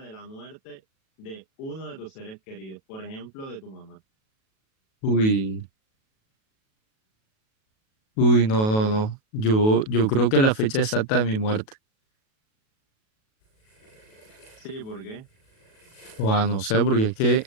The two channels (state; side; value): late; right; 37 ms